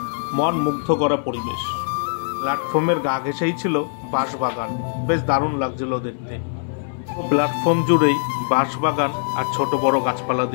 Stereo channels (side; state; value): right; silent; digital silence